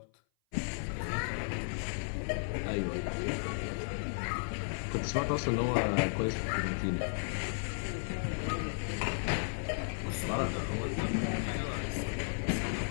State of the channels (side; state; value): right; silent; 55 dB below the other